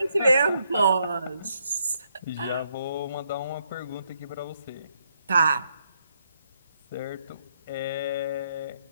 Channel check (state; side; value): inverted; both; correlation -0.76